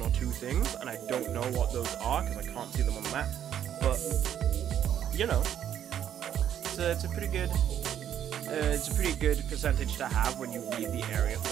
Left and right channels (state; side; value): quieter; left; 10.0 dB